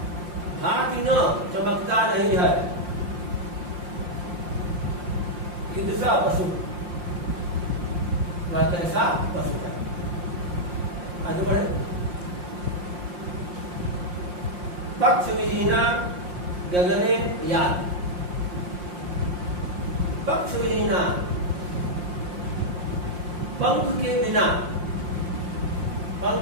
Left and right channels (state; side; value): late; left; 5.7 ms